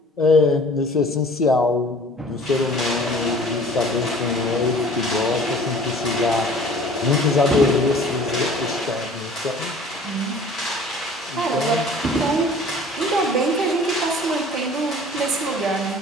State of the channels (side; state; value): both; normal; correlation 0.49